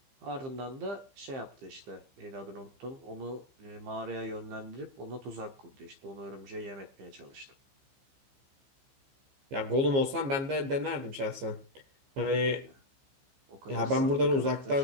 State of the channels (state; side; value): late; left; 15 ms